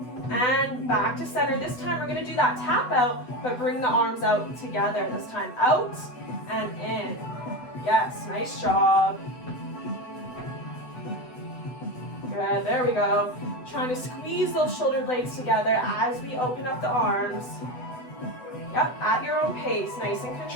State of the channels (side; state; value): right; late; 8.0 ms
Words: and back to center. This time we're gonna do that tap out, but bring the arms out together. This time out and in. Yes, nice job. Good, there we go. Trying to squeeze those shoulder blades together as we open up the arms. Yep, at your own pace, nice and